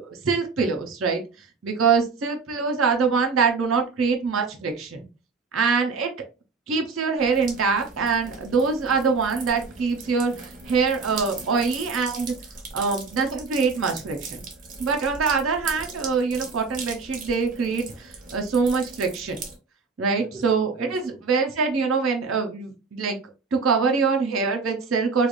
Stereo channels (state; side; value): quieter; left; 4.6 dB